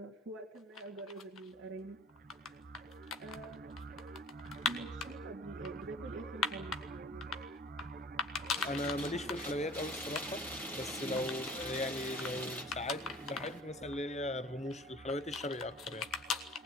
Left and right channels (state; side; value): normal; both; correlation 0.48